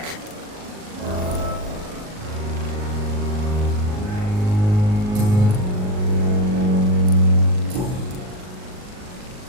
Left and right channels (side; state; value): left; late; 38 ms